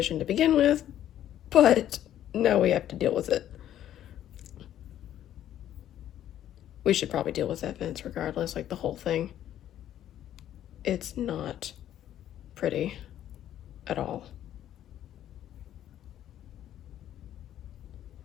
to begin with, but now we have to deal with it. We should probably deal with that fence regardless, like the whole thing. It's not pretty at all.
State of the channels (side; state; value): right; quieter; 11.5 dB